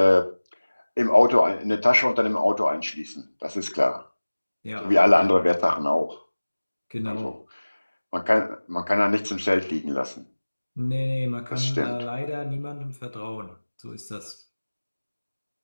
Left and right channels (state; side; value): inverted; both; correlation -1.00